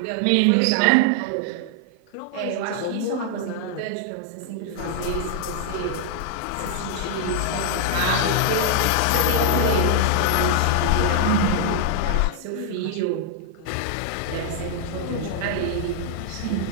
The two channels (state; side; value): different; both; correlation 0.00